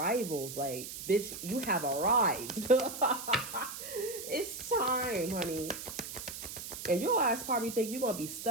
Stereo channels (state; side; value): noise; right; hiss, 9 dB below the sound